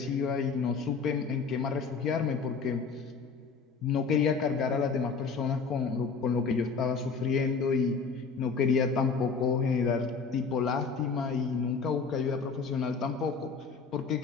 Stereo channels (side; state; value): right; quieter; 5.1 dB